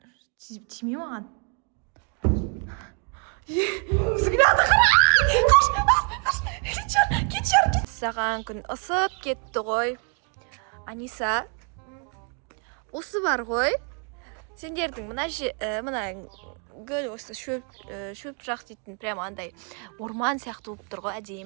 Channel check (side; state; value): left; quieter; 37.7 dB